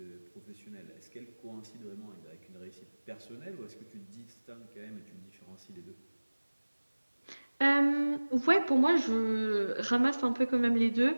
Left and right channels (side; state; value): both; inverted; correlation -1.00